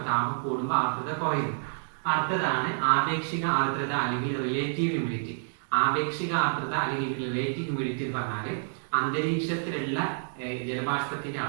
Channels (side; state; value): left; silent; digital silence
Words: താപം കൂടുമ്പോൾ ആർദ്രത കുറയുന്നു. അടുത്തതാണ് ആപേക്ഷിക ആർദ്രത അല്ലെങ്കിൽ റിലേറ്റീവ് ഹ്യൂമിഡിറ്റി. ആപേക്ഷിക ആർദ്രത അല്ലെങ്കിൽ റിലേറ്റീവ് ഹ്യൂമിഡിറ്റി എന്ന് പറഞ്ഞാൽ അന്തരീക്ഷത്തിലുള്ള ജലബാഷ്പത്തിന്റെ